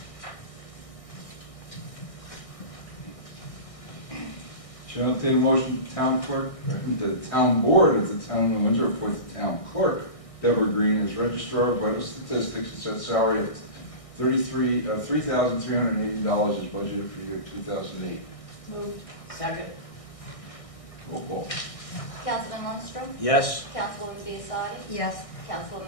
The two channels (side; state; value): right; late; 1.6 ms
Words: Shall I entertain a motion, town clerk, the town board of the town of Windsor appoint the town clerk, Deborah Green, as registrar of vital statistics and set salary at $3,380 is budgeted for the year 2008. Moved. Second. Roll call. Councilman Lundstrom? Yes. Councilwoman Biassadi? Yes.